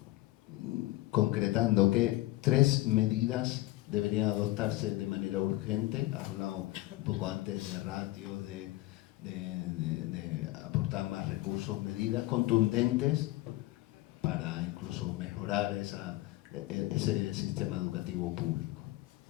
concretando que 3 medidas deberían adoptarse de manera urgente. Has hablado un poco antes de ratios, de aportar más recursos, medidas contundentes para incluso mejorar ese sistema educativo público.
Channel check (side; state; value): right; quieter; 18.3 dB